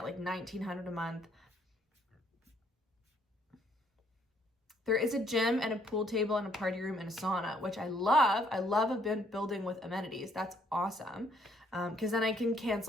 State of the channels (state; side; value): normal; both; correlation 0.67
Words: like $1,900 a month. There is a gym and a pool table and a party room and a sauna, which I love. I love a building with amenities. That's awesome. Because then I can